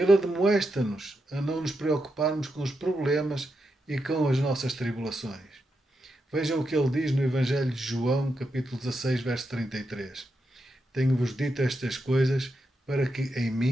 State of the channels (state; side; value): normal; both; correlation 0.85